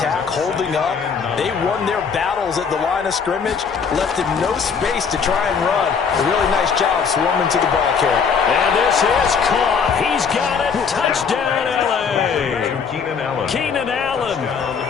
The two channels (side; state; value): right; quieter; 6.1 dB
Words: holding up. They won their battles at the line of scrimmage, left him no space to try and run. A really nice job swarming to the ball carrier. And this is caught. He's got it. Touchdown, L.A. Keenan Allen